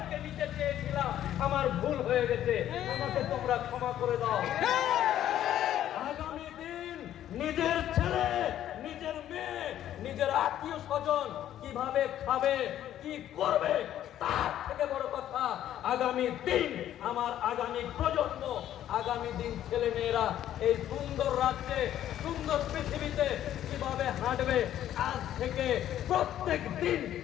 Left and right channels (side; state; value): right; quieter; 11.7 dB